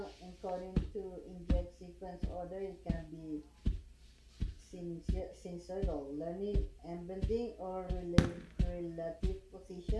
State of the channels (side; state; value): both; identical; correlation 1.00